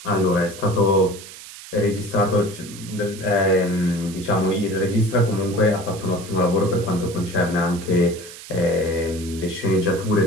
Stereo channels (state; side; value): noise; right; hiss, 15 dB below the sound